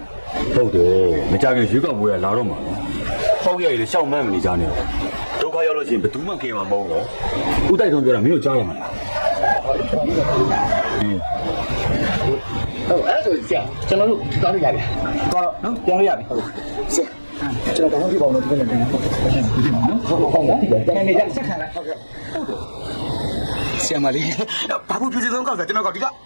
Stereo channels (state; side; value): inverted; both; correlation -1.00